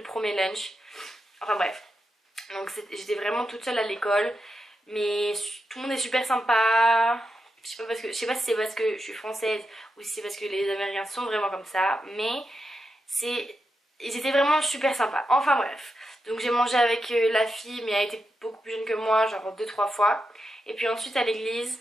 premier lunch. Enfin bref. Donc j'étais vraiment toute seule à l'école. Mais tout le monde est super sympa. Je sais pas si c'est parce que je suis française ou si c'est parce que les Américains sont vraiment comme ça. Mais ils étaient vraiment super sympas. Enfin bref. Donc j'ai mangé avec la fille, mais elle était beaucoup plus jeune que moi, genre 2-3 fois. Et puis ensuite à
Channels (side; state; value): both; normal; correlation 0.87